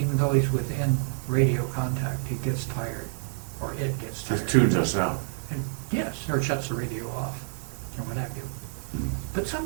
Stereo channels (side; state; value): left; silent; digital silence